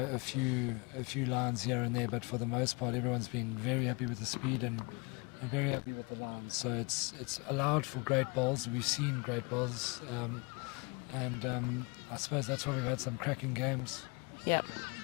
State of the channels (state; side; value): quieter; right; 29.2 dB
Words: few lines here and there, but for the most part, everyone's been very happy with the speed and very happy with the lines. So it's allowed for great bowls. We've seen great bowls, and I suppose that's why we've had some cracking games. Yeah.